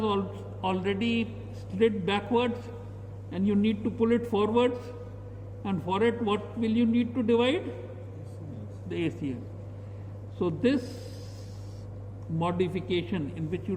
already slid backwards, and you need to pull it forwards, and for it what will you need to divide? The ACL. So this modification in which you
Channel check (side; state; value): both; identical; correlation 1.00